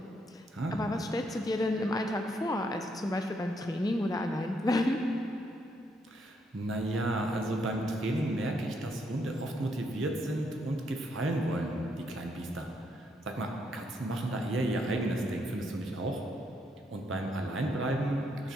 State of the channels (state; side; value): normal; both; correlation 0.75